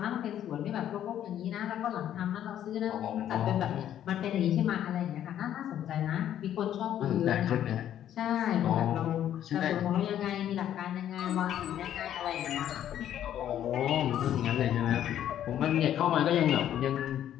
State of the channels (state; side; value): quieter; right; 10.9 dB